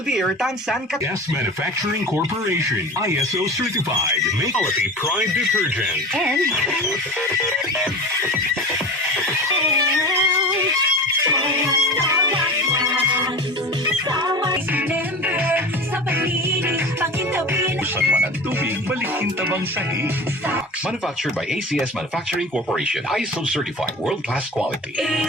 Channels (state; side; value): normal; both; correlation 0.32